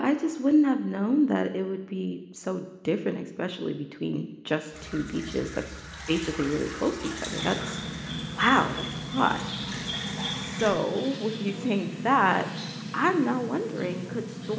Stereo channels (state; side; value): identical; both; correlation 1.00